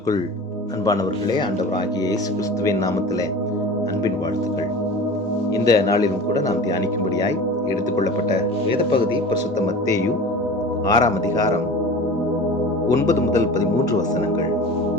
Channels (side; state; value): both; normal; correlation 0.36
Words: அன்பானவர்களே, ஆண்டவராகிய இயேசு கிறிஸ்துவின் நாமத்திலே அன்பின் வாழ்த்துக்கள். இந்த நாளிலும் கூட நாம் தியானிக்கும்படியாய் எடுத்துக்கொள்ளப்பட்ட வேத பகுதி பரிசுத்த மத்தேயு 6ஆம் அதிகாரம் 9 முதல் 13 வசனங்கள்.